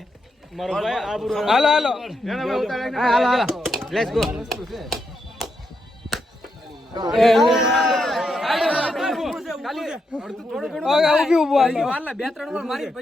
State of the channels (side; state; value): both; normal; correlation 0.82